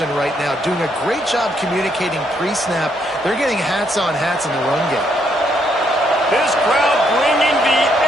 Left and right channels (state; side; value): normal; both; correlation 0.73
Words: right now, doing a great job communicating pre-snap. They're getting hats on hats in the run game. This crowd bringing the